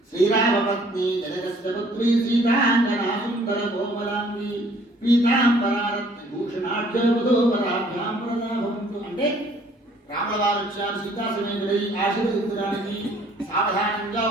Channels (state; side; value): normal; both; correlation 0.59